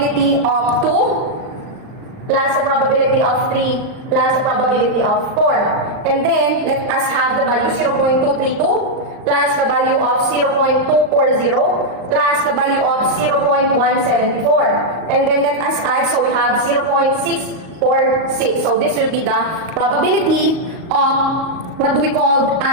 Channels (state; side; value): late; left; 38 ms